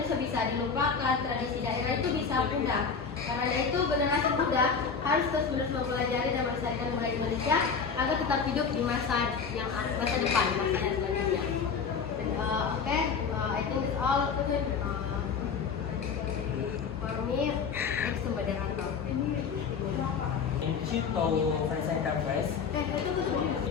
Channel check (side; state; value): right; quieter; 5.8 dB